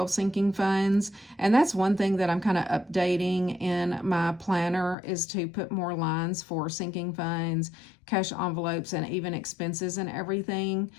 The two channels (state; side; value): drops out; right; at 5.0 s